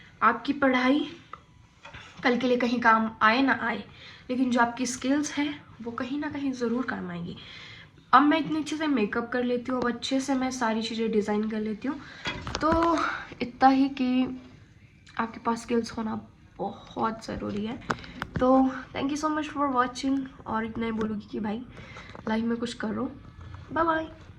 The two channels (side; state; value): both; identical; correlation 1.00